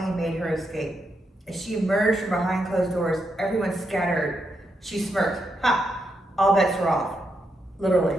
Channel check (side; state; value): both; normal; correlation 0.82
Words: made her escape. As she emerged from behind closed doors, everyone scattered. She smirked. Ha! All bets were off. Literally.